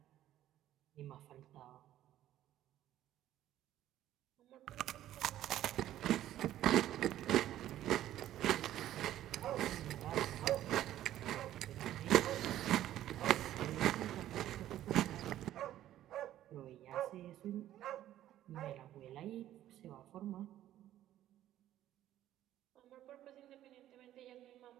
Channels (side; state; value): left; quieter; 12.8 dB